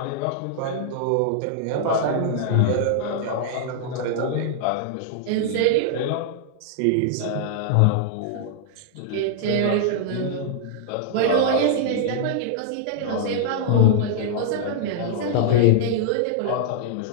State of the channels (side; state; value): both; different; correlation -0.01